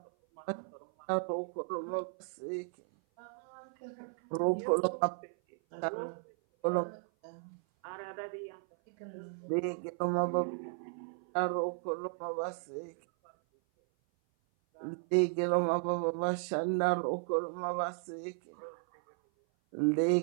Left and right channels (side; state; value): left; silent; 54 dB below the other